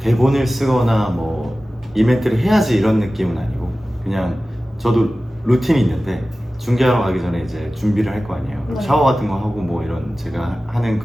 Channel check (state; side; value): normal; both; correlation 0.96